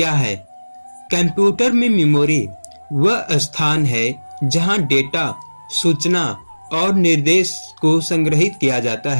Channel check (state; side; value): inverted; both; correlation -1.00